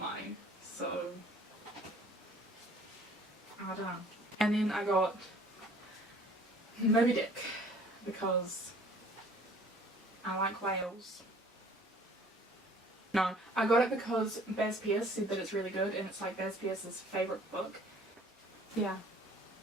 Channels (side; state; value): both; normal; correlation 0.53